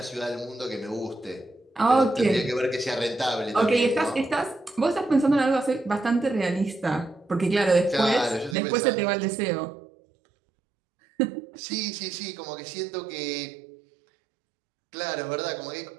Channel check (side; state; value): left; drops out; at 8.6 s